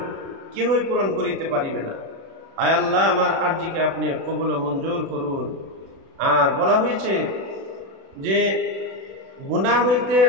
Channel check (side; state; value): left; late; 36 ms